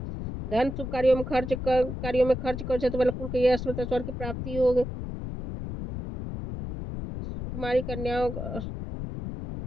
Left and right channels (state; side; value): noise; left; rumble, 6 dB below the sound